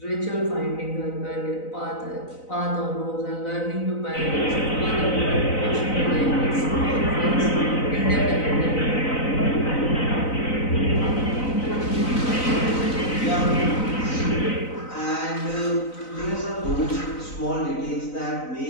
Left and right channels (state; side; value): late; right; 4.0 ms